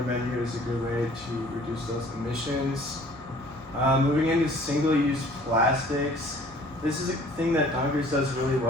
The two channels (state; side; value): normal; both; correlation 0.51